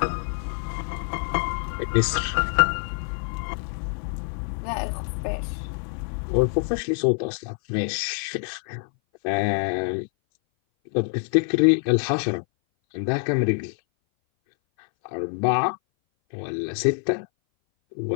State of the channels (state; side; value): silent; right; 58 dB below the other